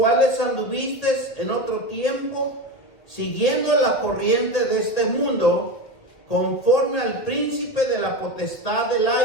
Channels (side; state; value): right; late; 2.0 ms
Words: anduvisteis en otro tiempo, siguiendo la corriente de este mundo, conforme al príncipe de la potestad del